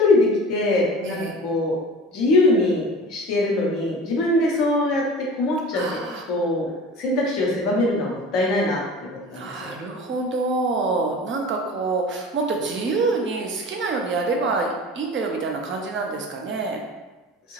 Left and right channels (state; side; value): normal; both; correlation 0.38